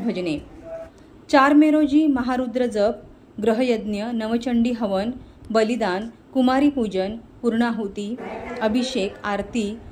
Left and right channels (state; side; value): identical; both; correlation 1.00